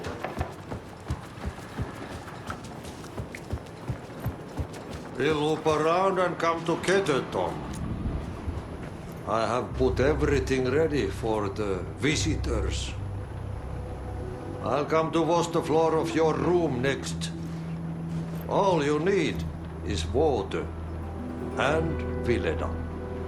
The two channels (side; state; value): both; identical; correlation 1.00